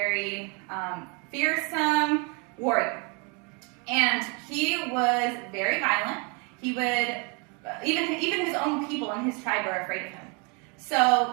fearsome warrior, and he was very violent. He would even his own people in his tribe were afraid of him. So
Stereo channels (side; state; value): left; quieter; 33.2 dB